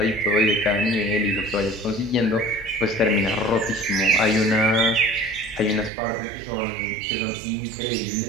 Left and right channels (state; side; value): drops out; left; at 5.9 s